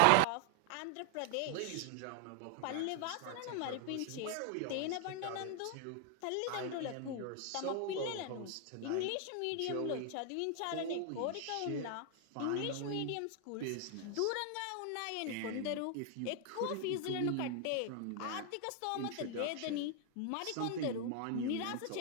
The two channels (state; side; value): different; both; correlation 0.00